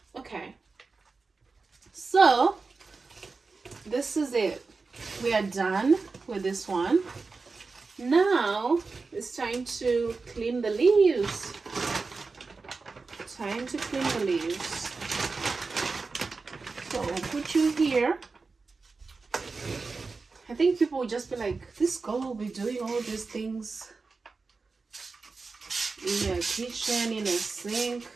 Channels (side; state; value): left; quieter; 4.2 dB